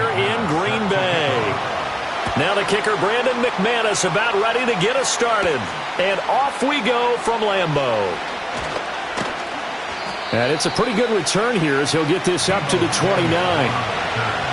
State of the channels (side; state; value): both; identical; correlation 1.00